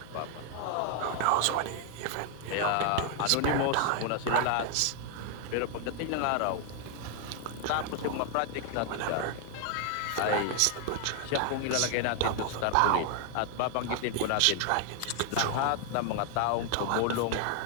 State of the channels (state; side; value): different; both; correlation 0.00